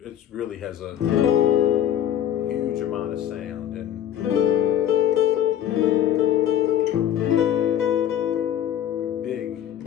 it really has a huge amount of sound, and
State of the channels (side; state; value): right; quieter; 10.8 dB